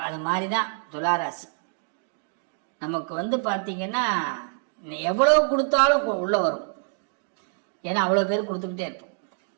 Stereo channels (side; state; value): left; silent; 60 dB below the other